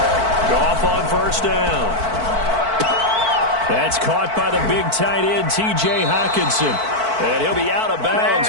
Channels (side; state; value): left; late; 4.5 ms